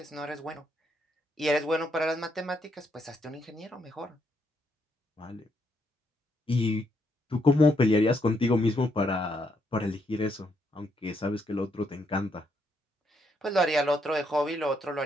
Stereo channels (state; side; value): normal; both; correlation 0.76